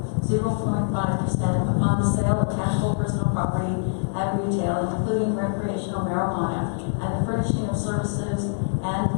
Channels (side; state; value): right; silent; 61 dB below the other